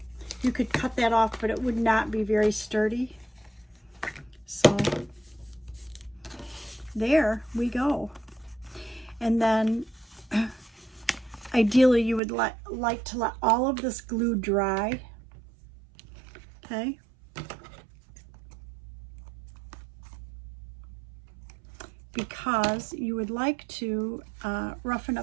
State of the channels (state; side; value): drops out; left; at 12.2 s